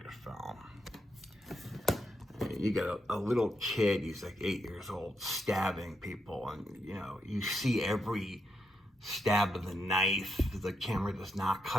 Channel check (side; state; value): both; normal; correlation 0.81